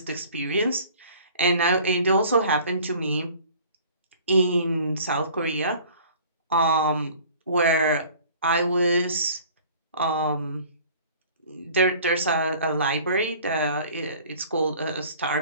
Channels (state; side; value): inverted; both; correlation -0.48